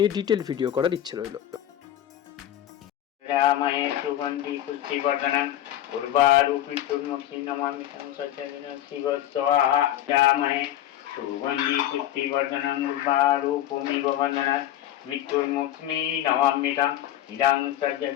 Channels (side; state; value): right; quieter; 12.3 dB